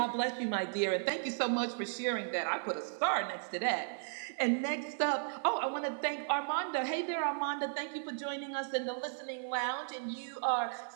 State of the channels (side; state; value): left; silent; 54 dB below the other